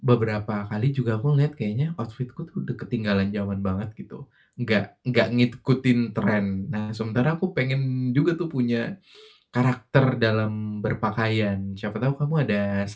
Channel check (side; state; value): both; identical; correlation 1.00